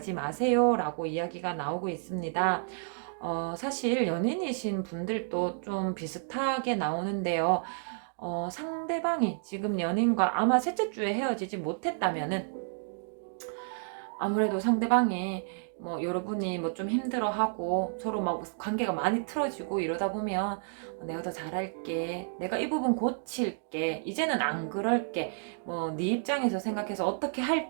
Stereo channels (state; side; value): silent; left; digital silence